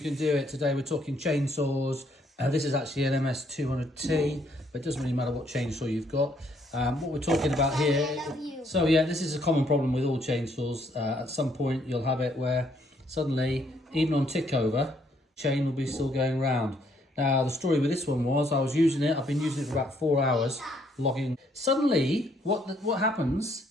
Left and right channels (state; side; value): normal; both; correlation 0.69